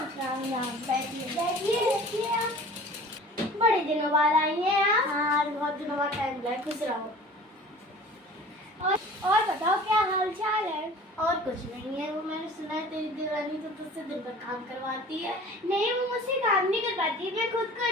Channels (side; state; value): both; normal; correlation 0.44